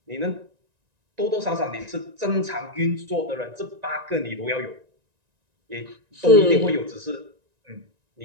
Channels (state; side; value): late; left; 1.9 ms